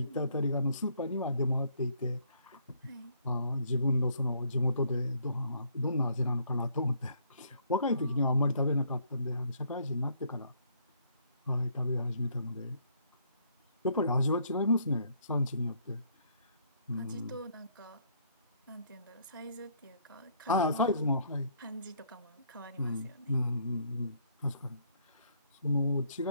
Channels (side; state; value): both; inverted; correlation -0.67